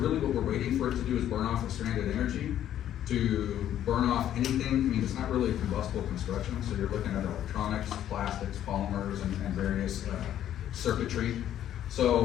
what we're waiting for it to do is burn off the stranded energy, to burn off anything. I mean, it's not really a combustible construction, so you're looking at electronics, plastics, polymers, and various circuitry.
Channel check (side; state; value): right; quieter; 11.2 dB